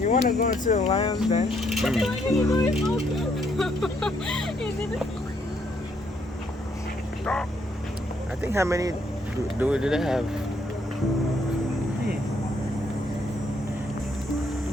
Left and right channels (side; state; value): both; normal; correlation 0.71